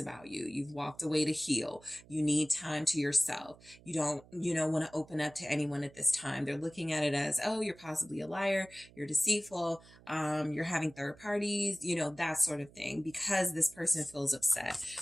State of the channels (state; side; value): noise; right; hum, 24 dB below the sound